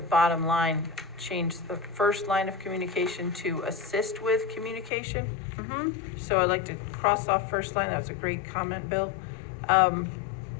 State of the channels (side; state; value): right; drops out; at 4.9 s